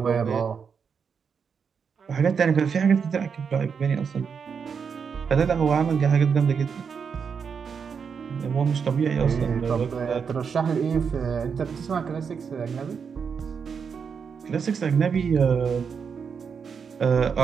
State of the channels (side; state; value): left; quieter; 6.3 dB